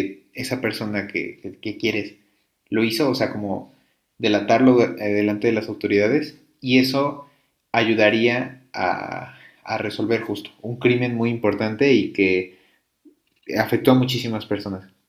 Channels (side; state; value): both; identical; correlation 1.00